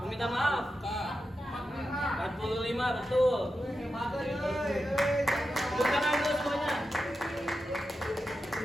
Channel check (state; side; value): normal; both; correlation 0.90